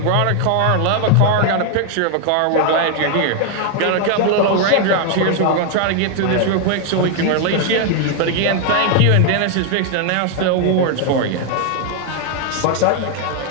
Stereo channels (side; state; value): both; different; correlation 0.00